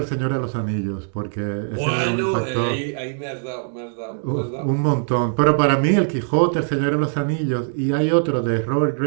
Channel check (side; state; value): left; silent; digital silence